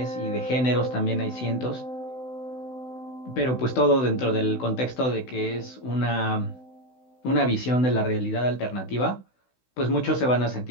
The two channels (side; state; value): right; late; 16 ms